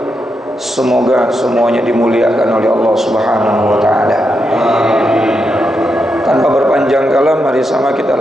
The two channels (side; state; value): both; normal; correlation 0.84